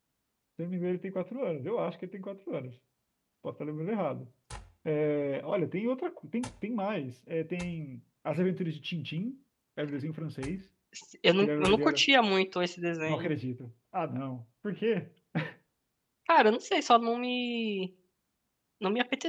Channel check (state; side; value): identical; both; correlation 1.00